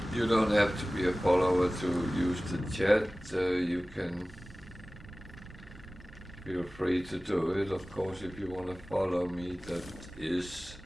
You don't have to be a follower to use the chat. You can feel free to do it. Of course, if you want to follow me, that is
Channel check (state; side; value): normal; both; correlation 0.97